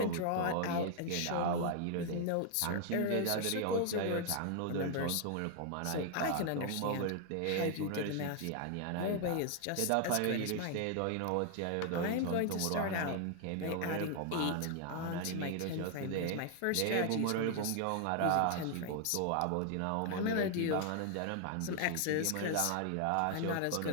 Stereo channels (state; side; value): different; both; correlation 0.00